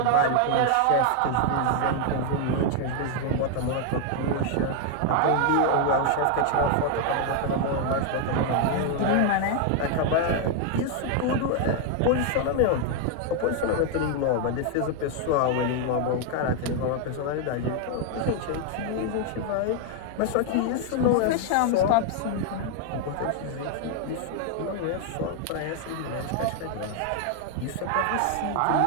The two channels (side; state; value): both; different; correlation 0.00